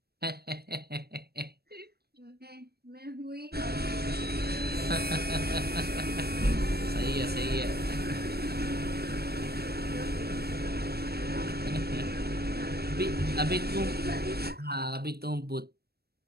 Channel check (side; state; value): left; late; 0.46 ms